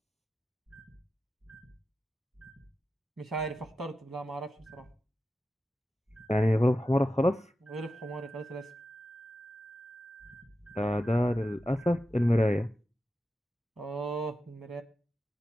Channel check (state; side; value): normal; both; correlation 0.91